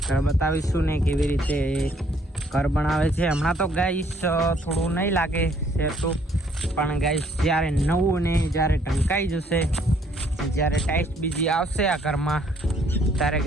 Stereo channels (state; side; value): normal; both; correlation 0.64